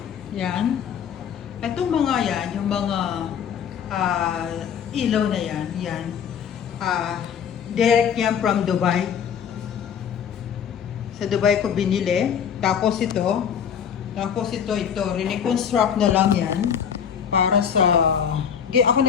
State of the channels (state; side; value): quieter; right; 7.9 dB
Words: Yan. Itong mga yan, yung mga ilaw na yan, yan. Direct yan from Dubai. Sa Dubai ko binili. Tapos ito, reconstruct na lang yan. Para sa, ako